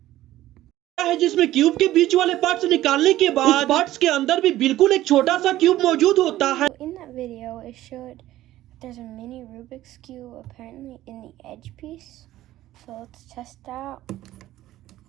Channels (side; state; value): left; quieter; 14.7 dB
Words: है जिसमें cube के बीच वाले parts निकालने के बाद उस पार्ट्स के अंदर भी बिल्कुल एक छोटा सा क्यूब मौजूद होता है. In that video it showed that there's a mini Rubik's Cube apparently in the edge piece. So let's test that out.